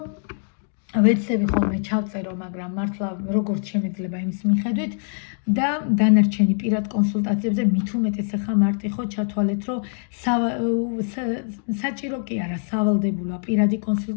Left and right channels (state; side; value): silent; right; 63 dB below the other